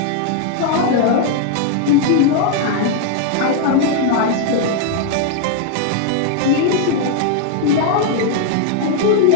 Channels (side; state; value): both; different; correlation 0.00